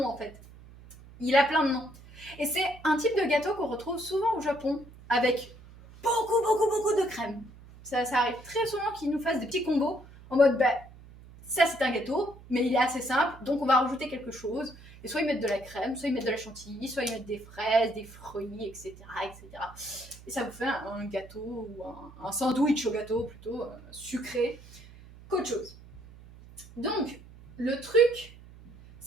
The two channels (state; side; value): noise; right; hum, 20 dB below the sound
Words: en fait. Il a plein de noms. Et c'est un type de gâteau qu'on retrouve souvent au Japon avec beaucoup de crème. Ça arrive très souvent qu'ils nous fassent des petits combos en mode bah, ça c'est un gâteau, mais il est assez simple, donc on va rajouter quelque chose. Et soit ils mettent de la crème, soit ils mettent de la chantilly, soit ils mettent des fraises, des fruits, etc. Et ça vous fait un gâteau ou un sandwich au gâteau plutôt sucré qu'autre chose. Donc, le truc,